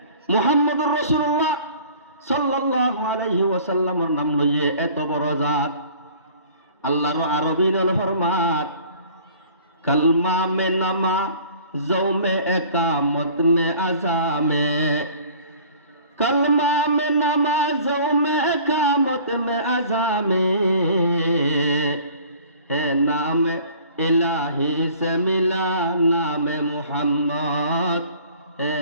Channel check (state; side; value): inverted; both; correlation -0.49